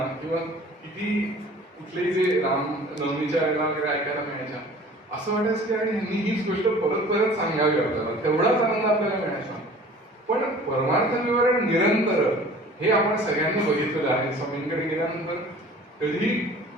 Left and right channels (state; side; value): normal; both; correlation 0.46